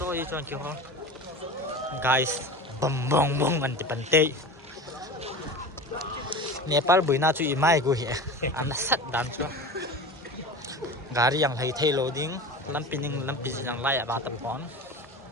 i chuan ki ho guys bom bong bong an ti pante Nepal buina chu imai go hi an sat dan cho gari yang hai thei loading lampining lampi yang lai ba tam pon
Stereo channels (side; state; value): both; normal; correlation 0.31